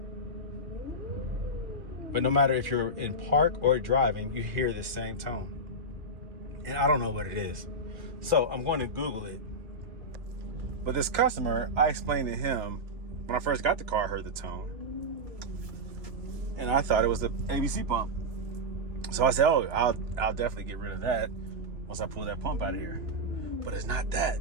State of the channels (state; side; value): late; left; 2.3 ms